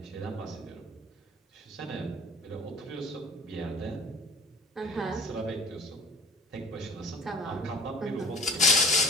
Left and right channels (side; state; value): both; normal; correlation 0.45